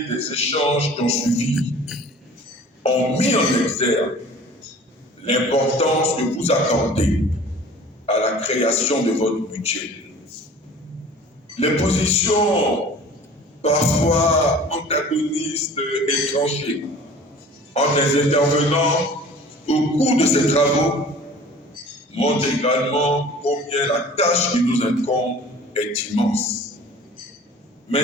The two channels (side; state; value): both; normal; correlation 0.45